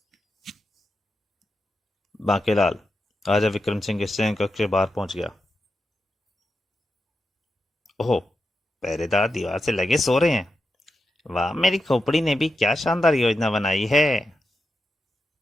बांकेलाल राजा विक्रम सिंह के शयन कक्ष के बाहर पहुंच गया। ओह, पहरेदार दीवार से लगे सो रहे हैं। वाह, मेरी खोपड़ी ने भी क्या शानदार योजना बनाई है।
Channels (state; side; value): normal; both; correlation 0.88